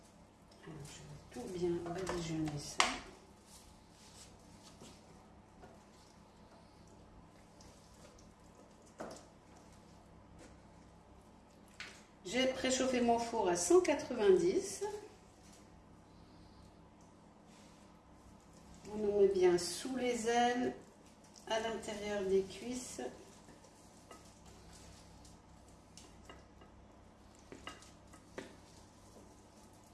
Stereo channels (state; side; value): identical; both; correlation 1.00